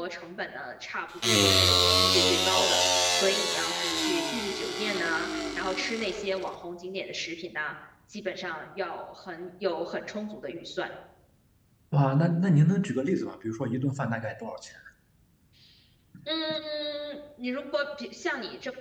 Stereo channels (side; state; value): both; identical; correlation 1.00